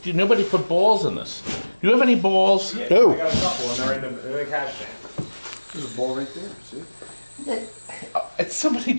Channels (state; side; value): inverted; both; correlation -1.00